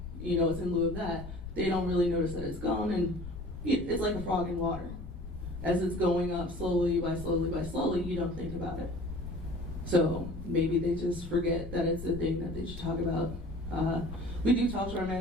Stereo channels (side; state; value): left; noise; rumble, 10 dB below the sound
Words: it's in lieu of that, they don't really notice that it's gone, and it's like a frog in water. As it's going up slowly by slowly, you don't think about it. So maybe they just forget that it's a thing that they should talk about. We do talk to our